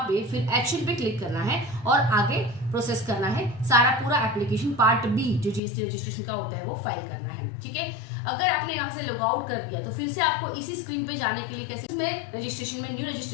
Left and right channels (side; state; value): right; drops out; at 5.6 s